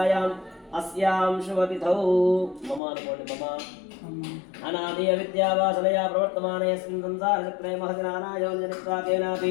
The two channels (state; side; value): drops out; right; at 2.8 s